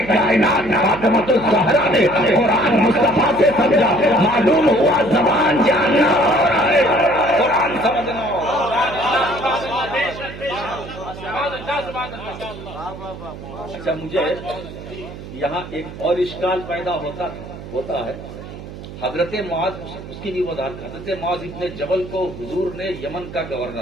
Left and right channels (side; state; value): right; noise; hum, 13 dB below the sound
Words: کائنات فاطمۃ الزہرا نے قرآن مصطفیٰ سے سمجھا۔ معلوم ہوا زبان جاننا اور ہے، قرآن سمجھنا۔ اچھا مجھے یہاں ایک اور اشکال پیدا ہوتا ہے، حضرت معاذ، اس کی بھی وضاحت، حضرت معاذ ابن جبل کو حضور نے یمن کا